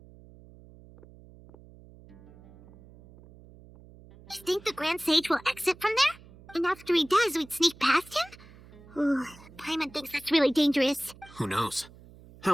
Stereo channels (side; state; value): right; noise; hum, 22 dB below the sound